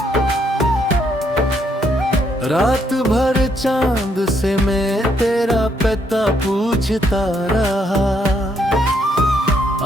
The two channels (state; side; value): normal; both; correlation 0.73